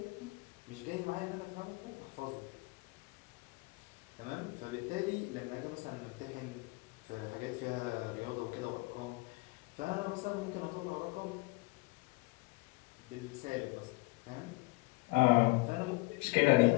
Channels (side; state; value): right; quieter; 24.4 dB